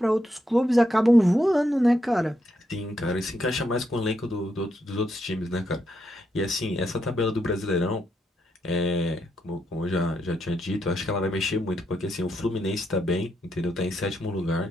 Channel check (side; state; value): both; normal; correlation 0.80